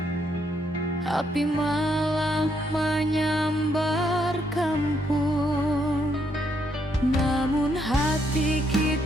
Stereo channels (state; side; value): normal; both; correlation 0.75